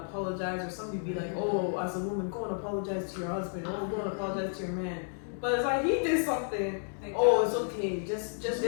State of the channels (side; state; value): right; silent; digital silence